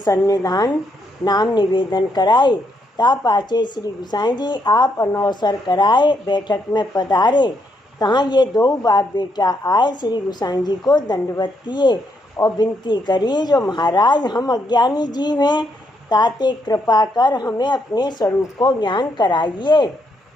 नाम निवेदन कराए। ता पाछे श्री गोसाई जी आप अनौसर कराए बैठक में पधारे। तहाँ ये दो बाप बेटा आए, श्री गोसाई जी को दंडवत किए और विनती करी, जो महाराज हम अज्ञानी जीव हैं, ताते कृपा कर हमें अपने स्वरूप को ज्ञान कराइए।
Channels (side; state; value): both; normal; correlation 0.76